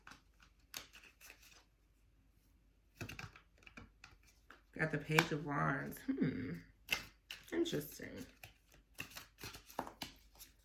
Got the Page of Wands. Interesting.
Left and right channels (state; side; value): identical; both; correlation 1.00